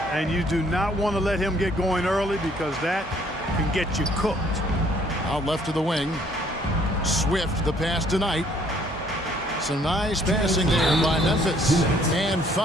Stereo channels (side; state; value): both; normal; correlation 0.62